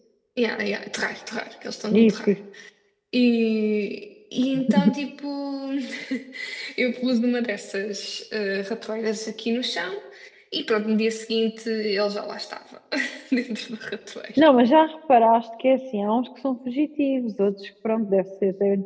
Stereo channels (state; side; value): identical; both; correlation 1.00